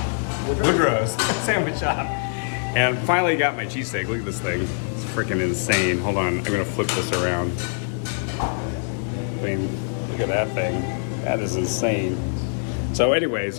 Woodrow's Sandwich Shop. And finally got my cheesesteak. Look at this thing. It's freaking insane. Hold on, I'm gonna flip this around. I mean, look at that thing. That is insane. So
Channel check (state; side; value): silent; right; 59 dB below the other